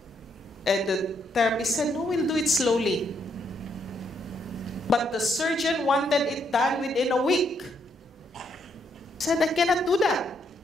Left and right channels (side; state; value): both; normal; correlation 0.75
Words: And the therapist said, no, we'll do it slowly. But the surgeon wanted it done within a week. I said, I cannot do that.